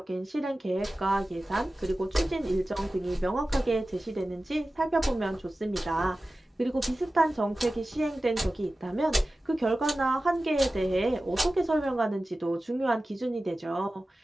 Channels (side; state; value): both; normal; correlation 0.95